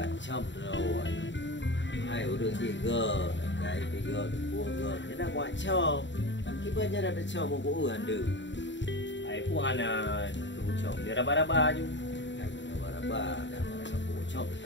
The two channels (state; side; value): late; right; 0.53 ms